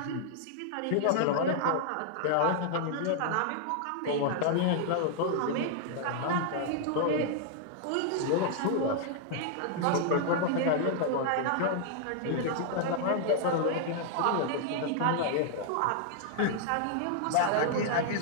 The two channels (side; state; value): both; different; correlation -0.01